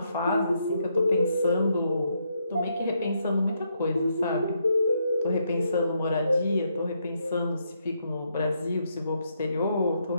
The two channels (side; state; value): both; inverted; correlation -0.77